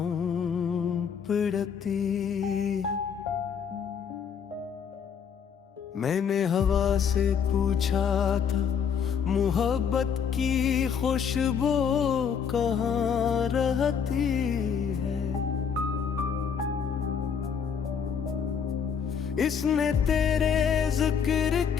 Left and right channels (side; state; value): right; quieter; 7.1 dB